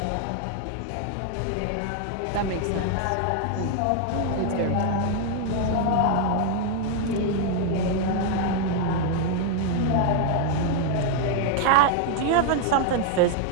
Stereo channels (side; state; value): both; different; correlation 0.00